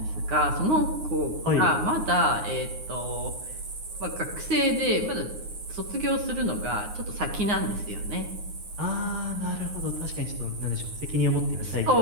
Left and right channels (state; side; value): late; left; 9.6 ms